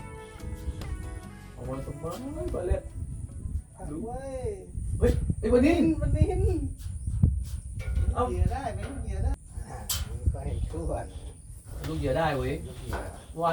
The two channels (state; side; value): identical; both; correlation 1.00